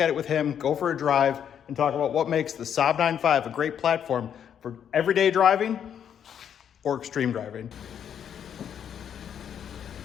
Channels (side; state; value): right; quieter; 8.7 dB